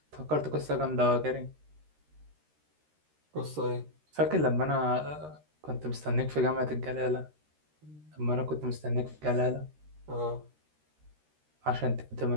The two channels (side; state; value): left; late; 13 ms